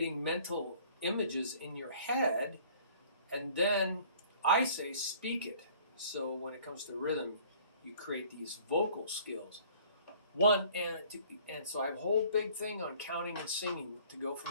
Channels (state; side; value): inverted; both; correlation -0.53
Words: mental images in your head, and then I say speak it. So when it comes to rhythm, you create these vocal skills. And so I have a whole big thing on counting and singing to go